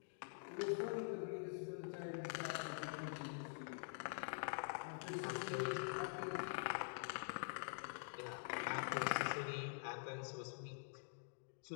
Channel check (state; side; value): silent; right; digital silence